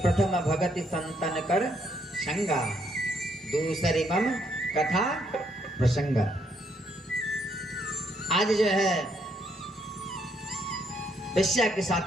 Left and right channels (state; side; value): normal; both; correlation 0.72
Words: प्रथम भगति संतन कर संगा, दूसरी मम कथा प्रसंग। आज जो है वेश्या के